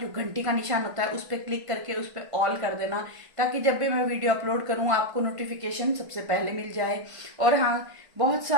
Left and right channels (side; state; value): left; late; 1.5 ms